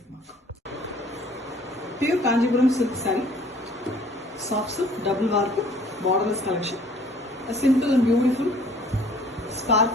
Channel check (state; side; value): normal; both; correlation 0.55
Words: mark. Pure Kanjivaram silk saree, soft silk, double warp, borderless collection. A simple and beautiful